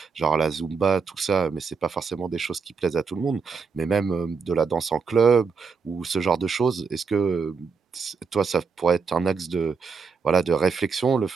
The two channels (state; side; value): quieter; left; 5.3 dB